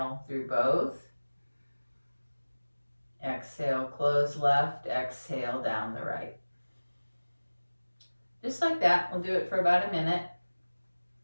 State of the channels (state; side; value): inverted; both; correlation -1.00